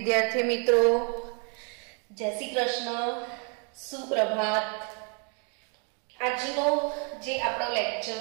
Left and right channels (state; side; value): quieter; left; 38.2 dB